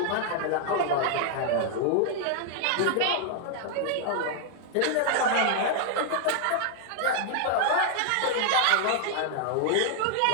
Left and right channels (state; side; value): different; both; correlation 0.00